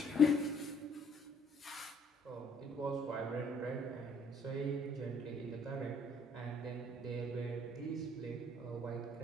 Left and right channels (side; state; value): both; normal; correlation 0.62